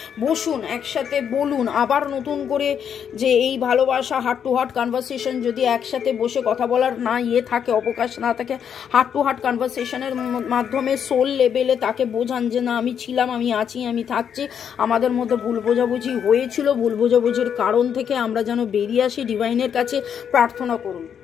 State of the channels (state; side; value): quieter; right; 8.1 dB